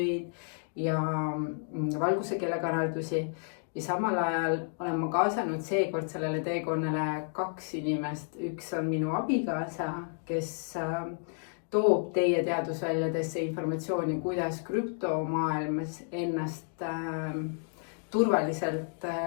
ja valguse keelekanaldusi. Ja samal ajal olen ma kaasanud seekord sellele teekonnale 2 inimest. Üks on minu abikaasa, kes toob teie teadusväljadesse informatsiooni, kuidas krüptomaailmas ennast turvaliselt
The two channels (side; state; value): right; silent; 57 dB below the other